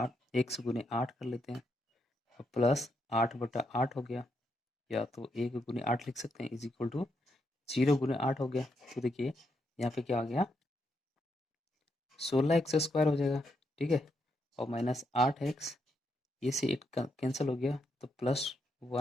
x गुने 8 कर लेते हैं, प्लस 8/8 हो गया। या तो 1 गुने 8 लिख सकते हैं इज इक्वल टू 0 गुने 8 हो गया। तो देखिए यहाँ पे क्या आ गया, 16x² हो जाएगा, ठीक है, और माइनस 8x, ये से 8 कैंसिल हो गया तो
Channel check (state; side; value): normal; both; correlation 0.80